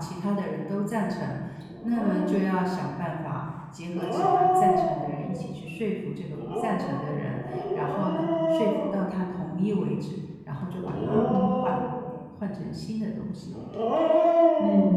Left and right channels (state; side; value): identical; both; correlation 1.00